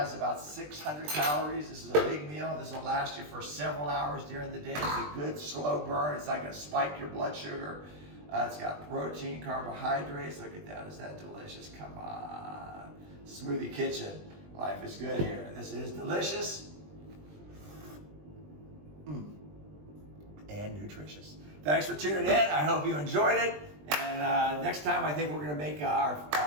about 600 calories. This is a big meal. This will last you for several hours during the day. It's a good slow burn. It's not going to spike your blood sugar. It's got protein, carbohydrates. Look at that. Is that delicious? Come on. Smoothie Kitchen. Life is good here. This is delicious and nutritious. Thanks for tuning in. I hope you enjoyed it. And next time, I think we're going to make our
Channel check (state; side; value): late; left; 20 ms